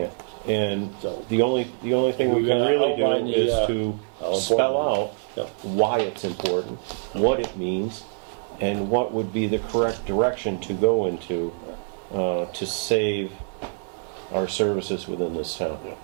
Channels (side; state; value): left; silent; digital silence